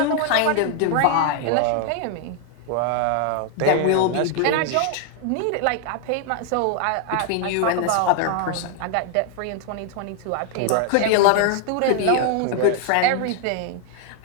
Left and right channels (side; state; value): both; different; correlation 0.00